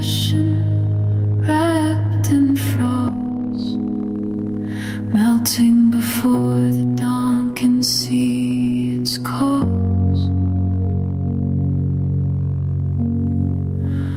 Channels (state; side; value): noise; left; rumble, 22 dB below the sound